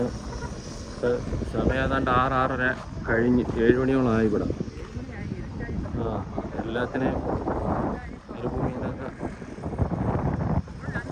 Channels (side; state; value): both; identical; correlation 1.00